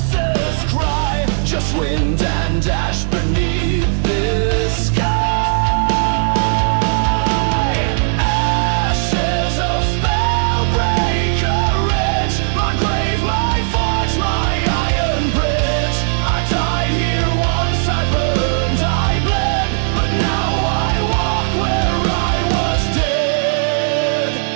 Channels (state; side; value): silent; left; digital silence